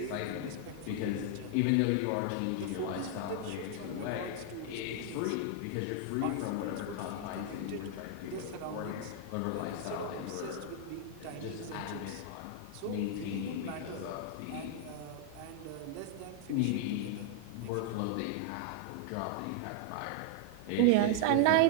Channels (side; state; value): both; different; correlation 0.00